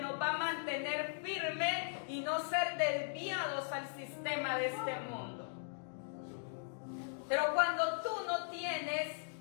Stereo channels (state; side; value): silent; right; digital silence